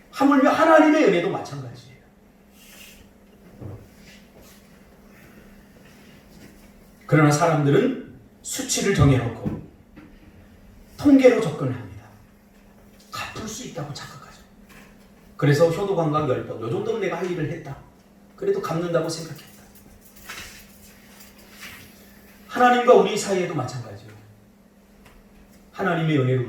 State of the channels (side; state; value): both; identical; correlation 1.00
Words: 하물며 하나님의 은혜도 마찬가지예요. 그러나 사람들은 수치를 정해놓고 통계로 접근을 합니다. 갚을 수 있다고 착각하죠. 그래서 효도관광 10번, 요 정도는 내가 할 일을 했다. 그래도 갚는다고 생각했다. 하나님과 우리 사이에도 마찬가지예요. 하나님의 은혜를